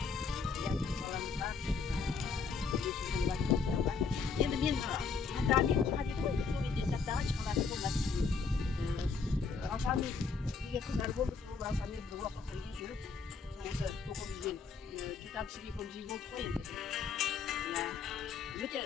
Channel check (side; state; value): right; quieter; 5.0 dB